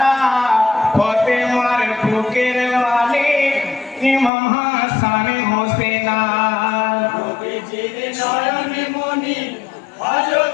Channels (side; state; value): right; drops out; at 4.3 s